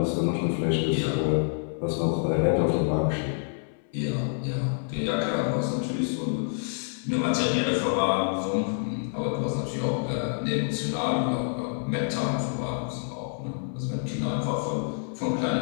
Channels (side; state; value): right; silent; 60 dB below the other